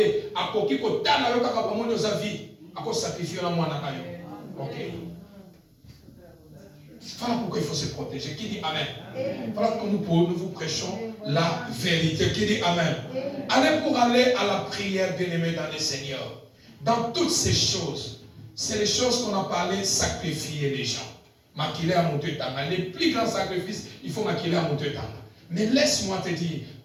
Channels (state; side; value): identical; both; correlation 1.00